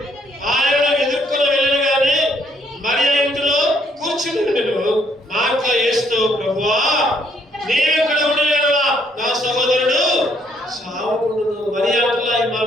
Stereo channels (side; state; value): both; normal; correlation 0.69